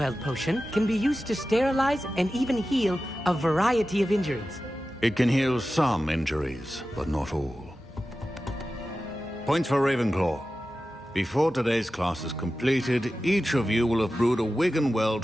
potion can be used to sterilize and even heal a variety of injuries. It can heal some injuries, but not all. Points for Ravenclaw. Before today's class is completed, each of you will have brewed a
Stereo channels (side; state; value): both; normal; correlation 0.94